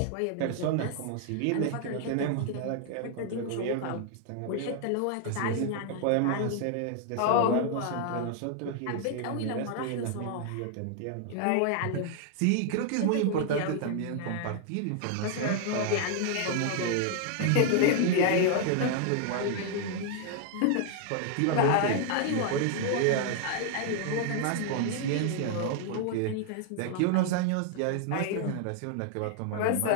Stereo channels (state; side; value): different; both; correlation 0.00